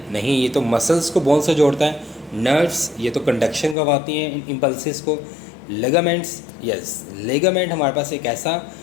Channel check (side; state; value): right; drops out; at 3.8 s